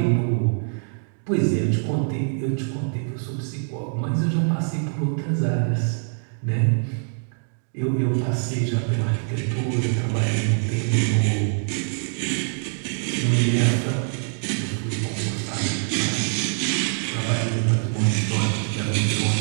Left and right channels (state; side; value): silent; left; 63 dB below the other